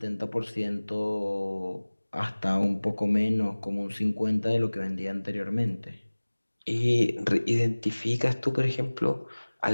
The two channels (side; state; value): both; inverted; correlation -1.00